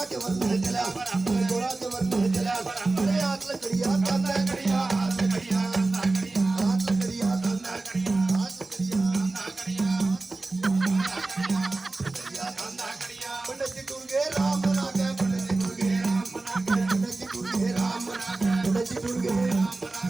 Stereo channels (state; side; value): quieter; left; 3.4 dB